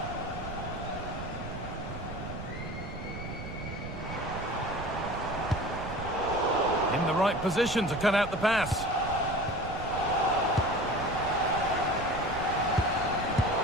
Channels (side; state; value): right; noise; rumble, 9 dB below the sound